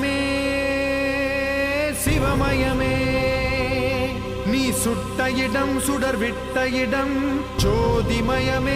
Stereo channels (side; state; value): both; identical; correlation 1.00